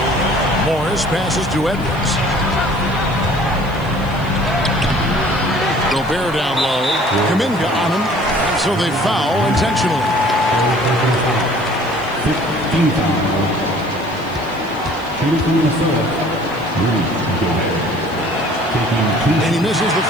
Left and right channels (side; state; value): left; noise; hiss, 24 dB below the sound